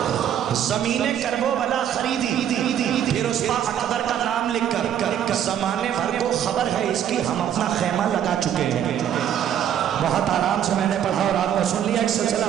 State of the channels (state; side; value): quieter; left; 9.9 dB